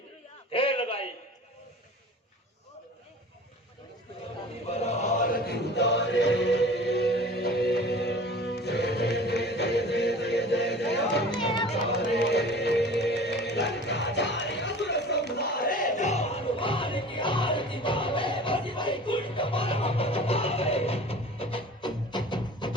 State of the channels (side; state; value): both; normal; correlation 0.42